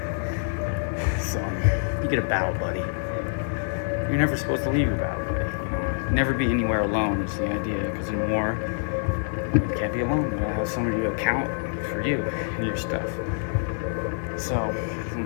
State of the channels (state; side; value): silent; right; digital silence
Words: So, you get a battle buddy. You're never supposed to leave your battle buddy. You know, never be anywhere alone is the idea, because in war, you can't be alone. You gotta have somebody to account for you and your stuff. So,